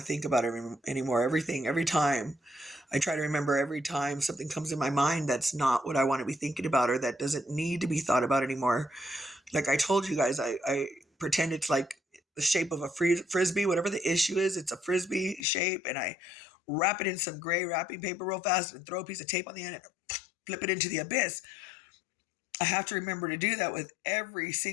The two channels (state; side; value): drops out; right; at 15.5 s